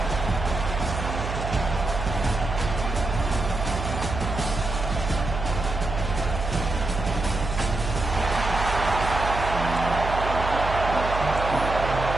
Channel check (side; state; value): right; noise; hum, 5 dB below the sound